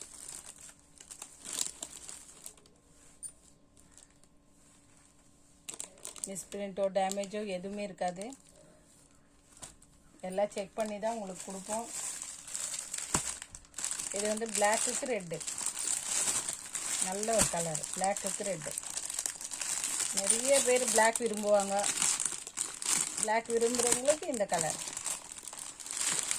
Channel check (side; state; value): both; identical; correlation 1.00